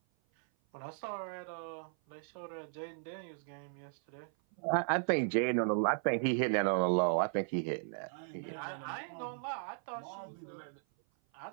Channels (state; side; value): silent; left; 53 dB below the other